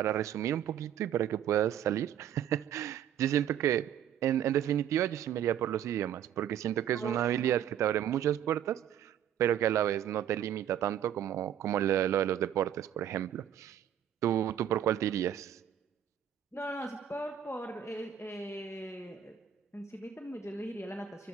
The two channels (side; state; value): left; quieter; 10.0 dB